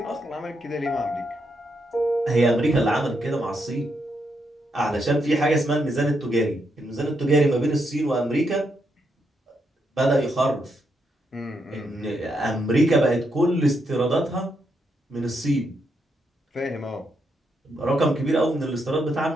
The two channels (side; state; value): both; normal; correlation 0.80